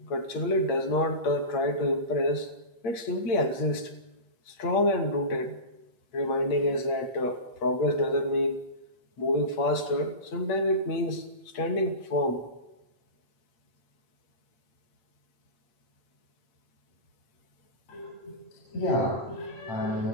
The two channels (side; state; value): right; late; 8.7 ms